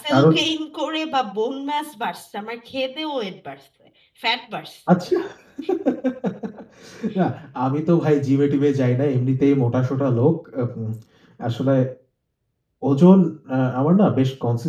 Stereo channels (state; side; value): identical; both; correlation 1.00